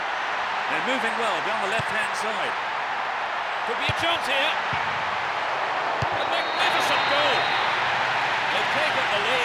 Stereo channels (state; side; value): identical; both; correlation 1.00